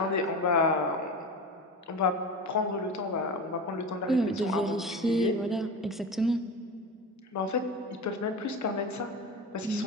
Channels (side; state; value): both; normal; correlation 0.28